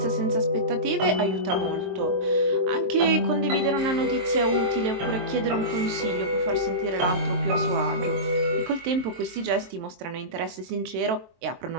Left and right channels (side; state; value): left; late; 23 ms